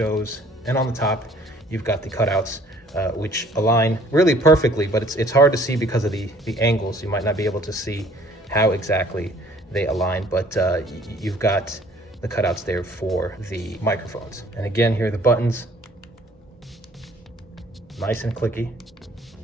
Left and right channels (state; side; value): normal; both; correlation 0.57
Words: and on the top, you've got the cutouts, which align really perfectly, but it's hard to see because of the angles. You might not be able to see how exactly they align, but you've got the cutouts there for the microphones. And again, here are the buttons, nice and clicky.